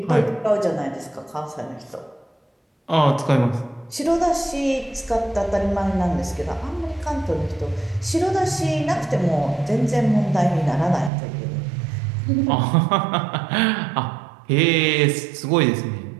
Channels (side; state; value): left; drops out; at 11.1 s